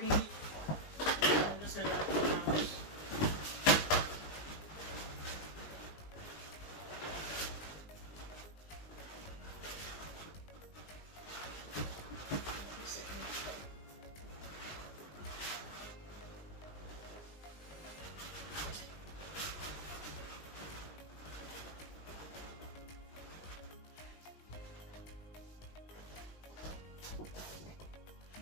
I'm just going to wrap it around.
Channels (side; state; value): right; late; 19 ms